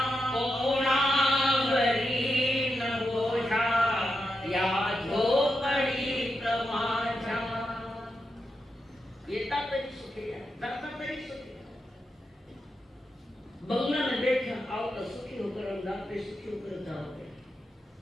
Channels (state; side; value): normal; both; correlation 0.87